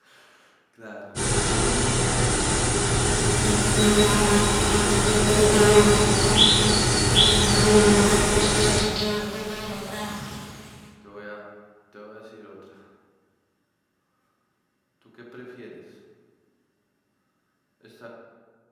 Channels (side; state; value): both; identical; correlation 1.00